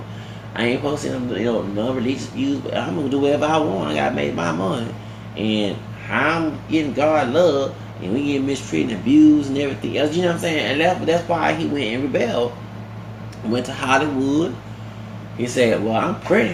I ain't supposed to see them, non-religious views, but I'm gonna do whatever I want. I gotta make my money. And I'm getting God love, and we get mistreated and abused and everything else. You know what I'm saying? And that's why he went and rebelled. Went to Hollywood. He said, well, I'm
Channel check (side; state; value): both; identical; correlation 1.00